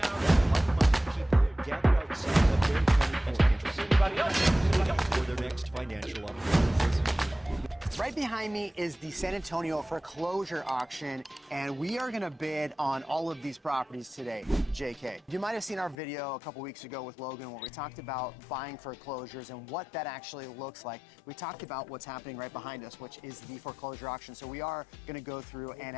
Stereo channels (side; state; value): right; drops out; at 16.0 s